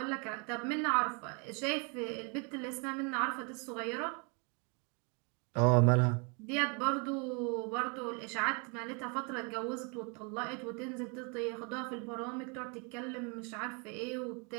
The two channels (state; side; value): quieter; left; 34.2 dB